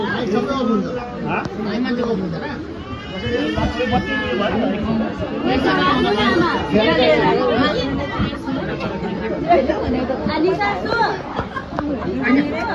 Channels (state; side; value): identical; both; correlation 1.00